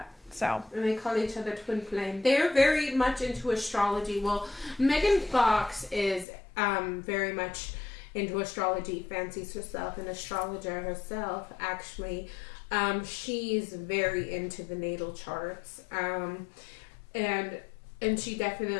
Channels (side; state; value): right; drops out; at 6.2 s